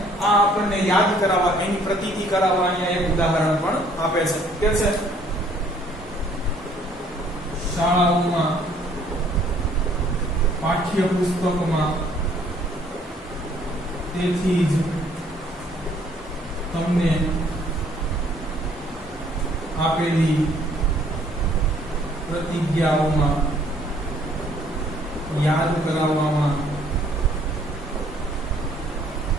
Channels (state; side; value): normal; both; correlation 0.61